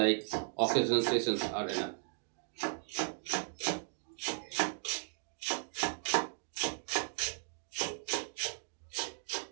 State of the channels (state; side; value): silent; left; digital silence